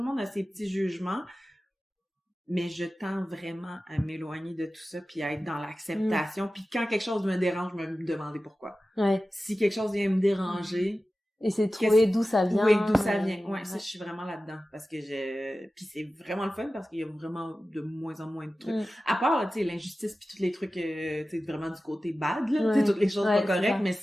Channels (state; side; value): normal; both; correlation 0.95